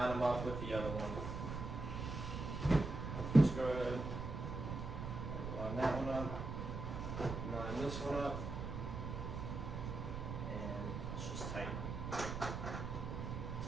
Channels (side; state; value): right; noise; rumble, 4 dB below the sound